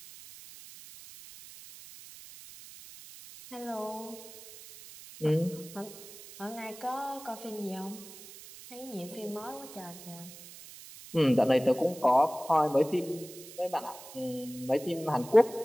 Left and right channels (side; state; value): right; noise; hiss, 16 dB below the sound